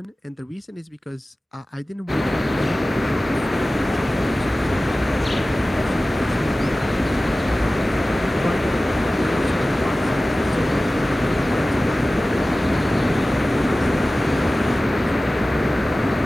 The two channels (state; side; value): normal; both; correlation 0.96